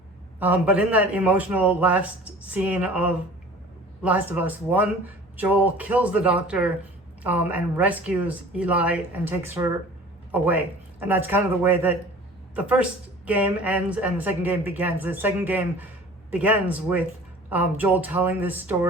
But in that emotional last scene of Last of Us 1, Joel kills the doctor and rescues Eli and takes her away. And that's kind of the way that the first game ends and the second game begins. The second game begins with Joel telling this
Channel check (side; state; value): both; normal; correlation 0.44